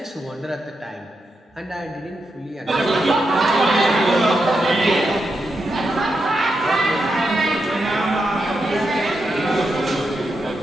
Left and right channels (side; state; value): both; normal; correlation 0.85